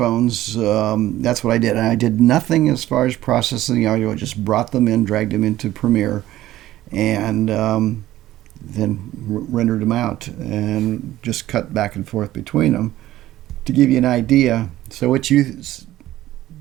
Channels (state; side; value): quieter; left; 14.8 dB